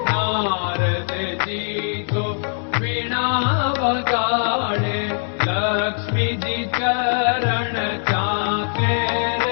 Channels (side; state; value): right; silent; 65 dB below the other